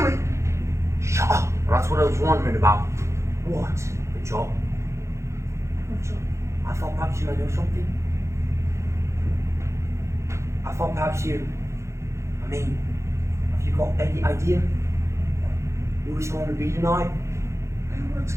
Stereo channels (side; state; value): left; late; 0.14 ms